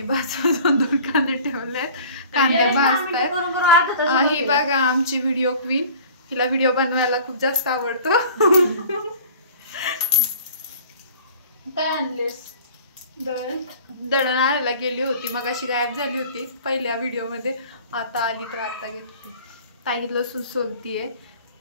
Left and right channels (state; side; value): inverted; both; correlation -0.45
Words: बाजूला 2 कांदे ठेवले, कांदे भाजतायत. ही बघा आमची व्हिडिओ क्वीन, हिला व्हिडिओ बनवायला खूप जास्त आवडतो. काय आणलेस? दळण आणायला गेली होती, मग अशी गायब झाली होती पहिल्या व्हिडिओ मध्ये. आता आली तर आता घेतली. ताई लसूण सोलतीये.